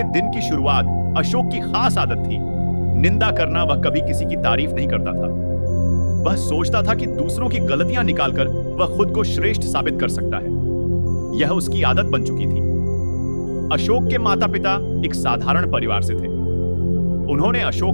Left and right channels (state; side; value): inverted; both; correlation -1.00